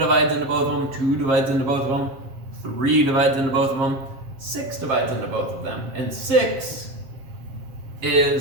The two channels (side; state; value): left; late; 7.5 ms